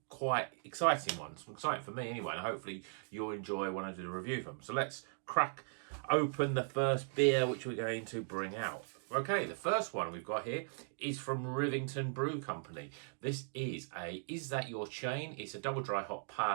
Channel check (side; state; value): left; silent; digital silence